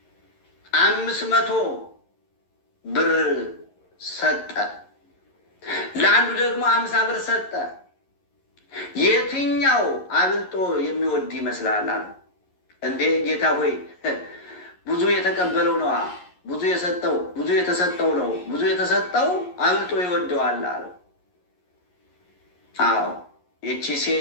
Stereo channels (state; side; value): late; right; 11 ms